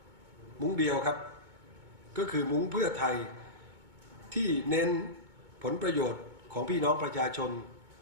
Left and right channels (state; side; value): late; left; 2.2 ms